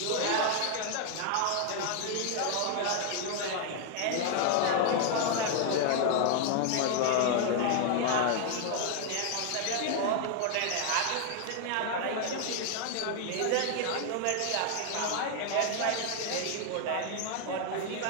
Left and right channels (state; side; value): different; both; correlation 0.00